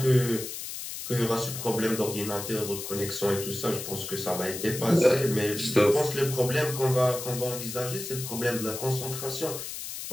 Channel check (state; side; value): noise; left; hiss, 8 dB below the sound